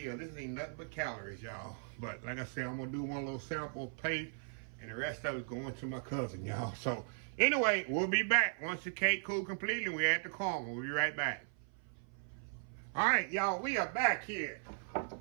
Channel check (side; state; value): left; silent; 53 dB below the other